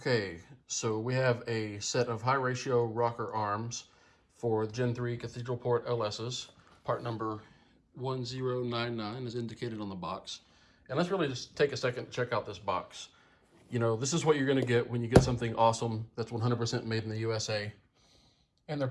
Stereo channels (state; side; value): identical; both; correlation 1.00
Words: so we have a set of high ratio rocker arms for Gen 3 Cathedral Port LSs. Part number 1099 is indicated on the box. And let's really just take a second to check out this box. This is what you're going to get when you get something awesome that's 100% made in the USA, and they're